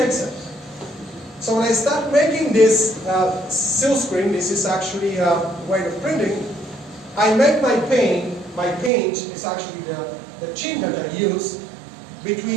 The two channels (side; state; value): left; drops out; at 8.9 s